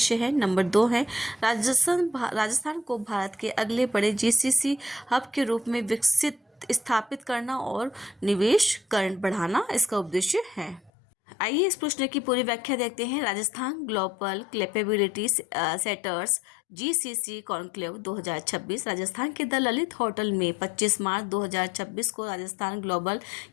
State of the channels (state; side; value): drops out; right; at 10.9 s